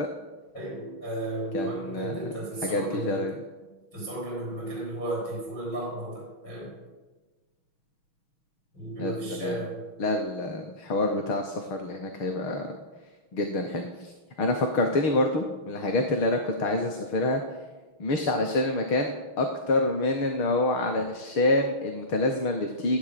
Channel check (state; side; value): late; right; 6.2 ms